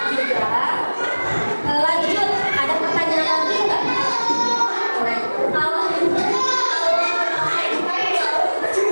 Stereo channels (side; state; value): both; inverted; correlation -1.00